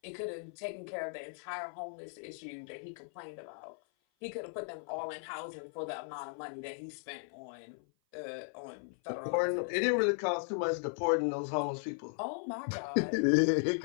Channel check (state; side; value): silent; right; 53 dB below the other